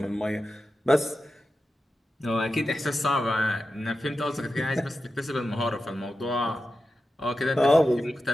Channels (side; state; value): both; normal; correlation 0.91